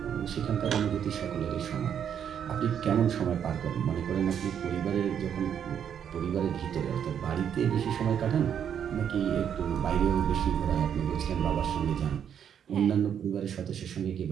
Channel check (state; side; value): quieter; left; 8.6 dB